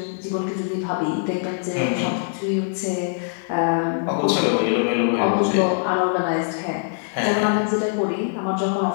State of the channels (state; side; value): silent; right; digital silence